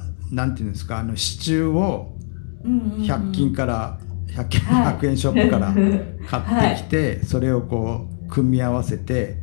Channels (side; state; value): right; silent; digital silence